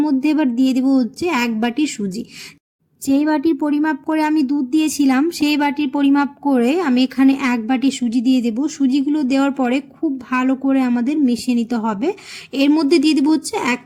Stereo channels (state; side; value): identical; both; correlation 1.00